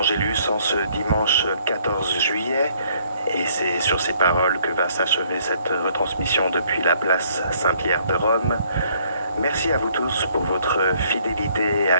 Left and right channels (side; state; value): both; inverted; correlation -0.64